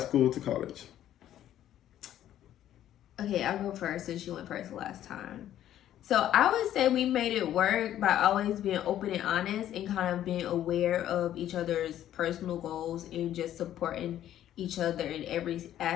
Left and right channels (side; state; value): right; quieter; 11.8 dB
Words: to college. Okay, I'll go first since you went first last time. So I would say we made it work by always being open and honest and kind of being aware of each other's personal goals and just supporting each other in every